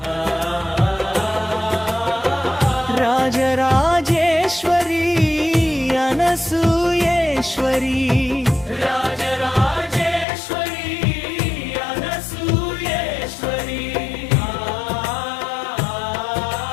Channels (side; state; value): right; drops out; at 10.2 s